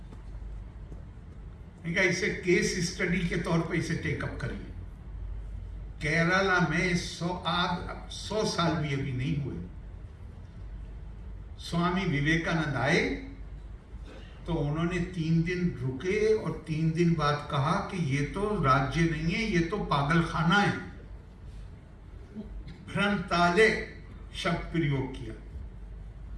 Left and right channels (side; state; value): both; identical; correlation 1.00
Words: इसे केस स्टडी के तौर पे इसे टेकअप करिए। केरला में 100 साल भी अभी नहीं हुए, स्वामी विवेकानंद आए तो उन्होंने 3 दिन रुके और 3 दिन बाद कहा कि ये तो राज्य नहीं है, ये तो पागलखाना है। भ्रंताले शब्द प्रयोग किया,